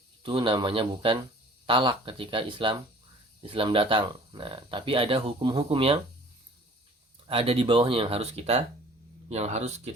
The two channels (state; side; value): normal; both; correlation 0.50